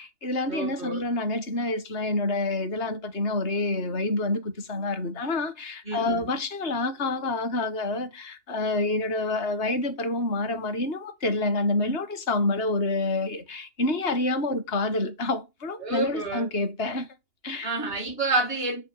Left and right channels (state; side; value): late; right; 2.9 ms